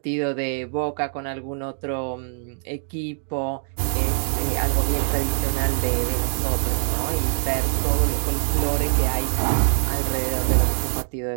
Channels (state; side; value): silent; left; digital silence